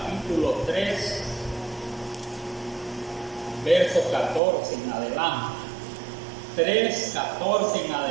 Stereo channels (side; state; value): left; drops out; at 4.4 s